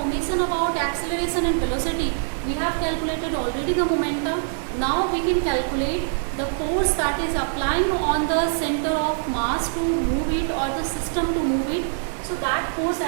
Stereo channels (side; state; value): left; silent; digital silence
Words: about acceleration and velocity. We have calculated already the momentum. Now we can calculate the force that is applying on the center of mass to move it, or the system to move it. So that force,